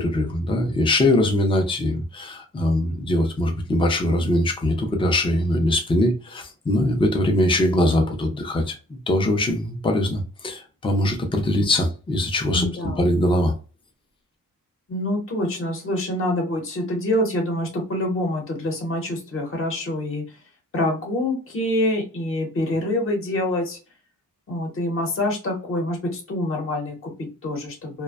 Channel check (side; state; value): both; normal; correlation 0.58